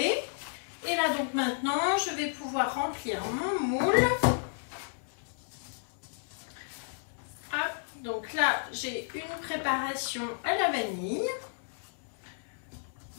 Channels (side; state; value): right; silent; 56 dB below the other